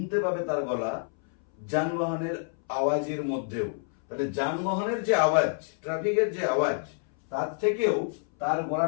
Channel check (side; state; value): right; silent; 59 dB below the other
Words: পাবে তার গলা যানবাহনের আওয়াজের মধ্যেও। তাহলে যানবাহনের যে আওয়াজ, ট্রাফিকের যে আওয়াজ, তার থেকেও তার